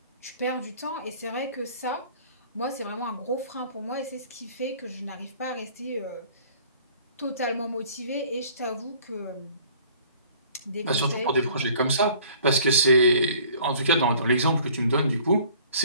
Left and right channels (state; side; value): inverted; both; correlation -0.52